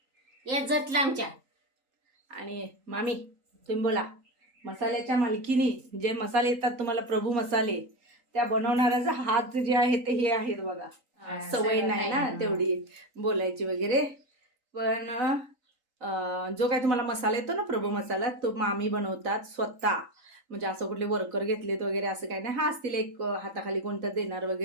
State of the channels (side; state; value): left; late; 3.8 ms